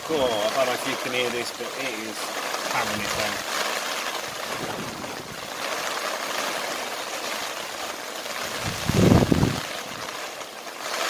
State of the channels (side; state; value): both; identical; correlation 1.00